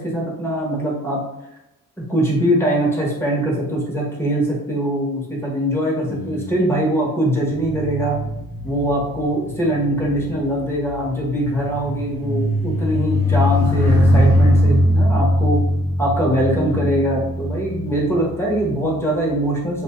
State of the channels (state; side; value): normal; both; correlation 0.60